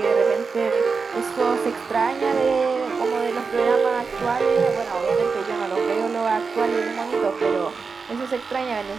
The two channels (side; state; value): left; quieter; 4.9 dB